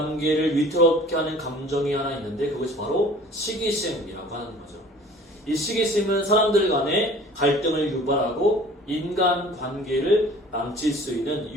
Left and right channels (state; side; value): normal; both; correlation 0.48